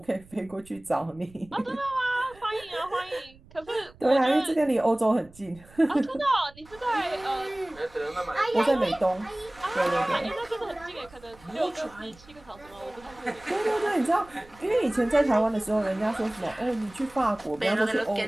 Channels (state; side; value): noise; right; rumble, 24 dB below the sound